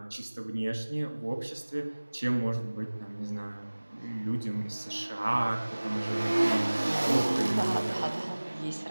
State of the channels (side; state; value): both; inverted; correlation -1.00